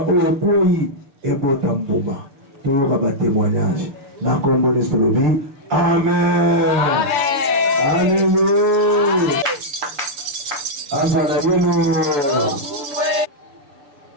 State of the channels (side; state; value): left; late; 7.0 ms